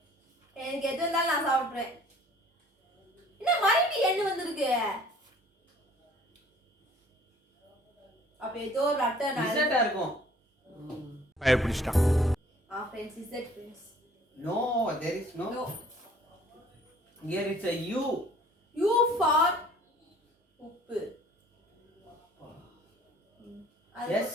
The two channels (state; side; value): normal; both; correlation 0.54